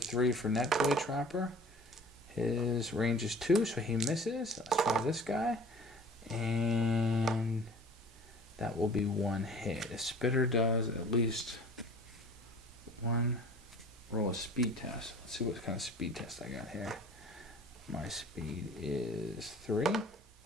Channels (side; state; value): both; normal; correlation 0.46